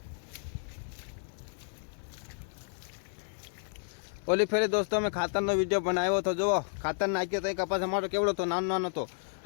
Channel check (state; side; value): silent; right; 57 dB below the other